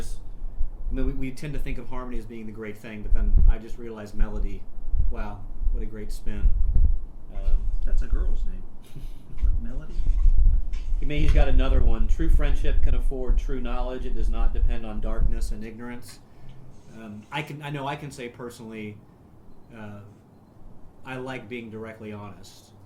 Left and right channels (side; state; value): both; identical; correlation 1.00